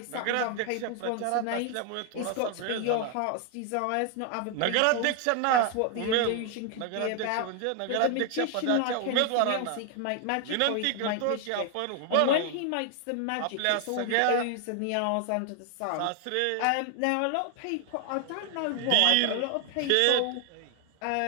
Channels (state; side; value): different; both; correlation 0.00